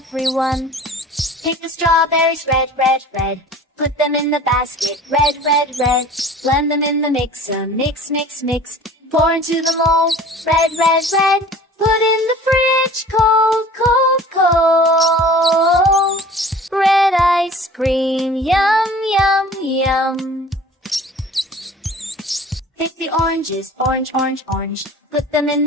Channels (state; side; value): normal; both; correlation 0.44